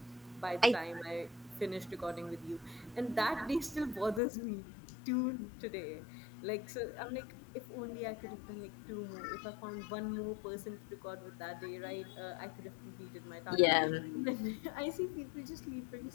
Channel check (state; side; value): drops out; right; at 4.2 s